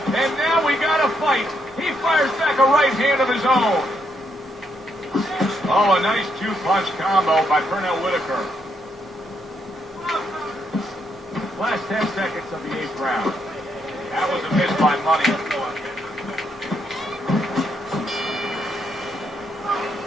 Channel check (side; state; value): both; normal; correlation 0.76